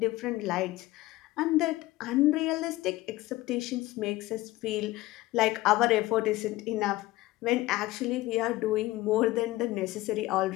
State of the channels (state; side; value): quieter; right; 18.3 dB